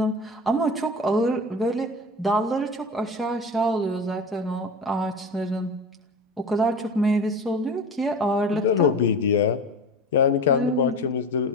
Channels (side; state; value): both; normal; correlation 0.32